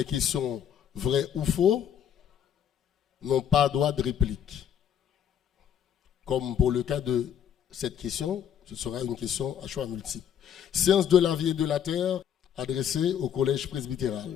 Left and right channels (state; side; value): quieter; right; 9.2 dB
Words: questions vrai ou faux, n'ont pas droit de réplique. Comme pour le cas de cette question, ce sera une question à choix multiple. Sciences de la vie et de la terre, adressée au collège